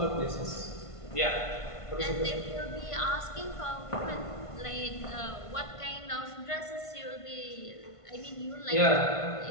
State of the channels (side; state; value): right; late; 1.5 ms